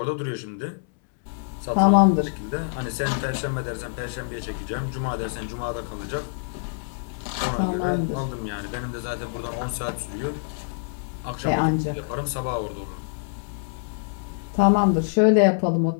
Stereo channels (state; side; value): silent; right; 61 dB below the other